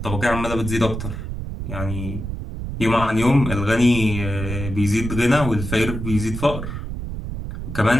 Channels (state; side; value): noise; right; rumble, 6 dB below the sound